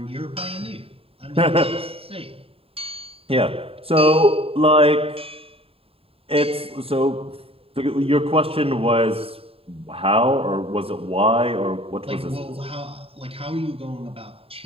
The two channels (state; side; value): late; left; 0.27 ms